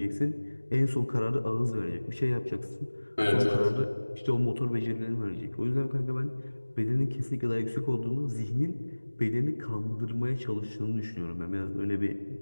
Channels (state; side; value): inverted; both; correlation -1.00